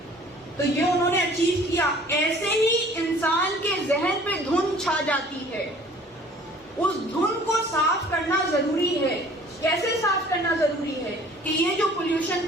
تو یہ انہوں نے اچیو کیا. ایسے ہی انسان کے ذہن پہ دھند چھا جاتی ہے، اس دھند کو صاف کرنا ضروری ہے. کیسے صاف کرنا ضروری ہے؟ کہ یہ جو پولیوشن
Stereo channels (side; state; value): both; normal; correlation 0.51